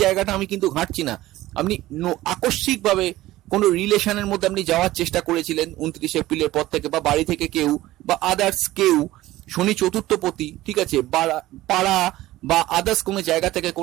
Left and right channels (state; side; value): quieter; left; 16.4 dB